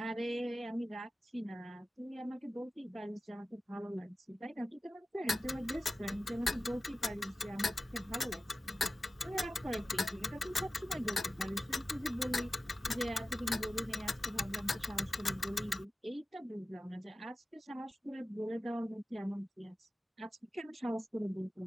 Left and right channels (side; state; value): both; normal; correlation 0.95